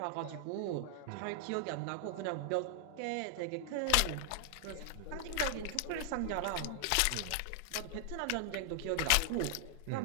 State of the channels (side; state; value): both; different; correlation 0.00